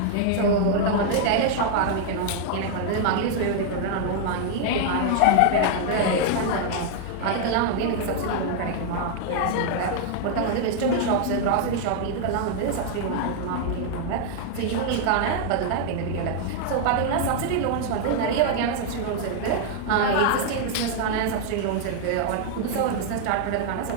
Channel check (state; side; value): different; both; correlation 0.00